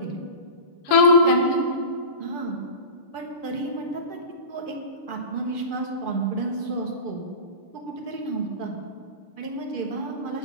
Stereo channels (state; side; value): late; right; 6.8 ms